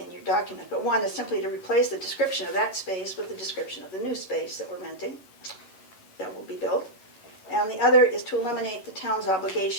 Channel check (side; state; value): right; late; 11 ms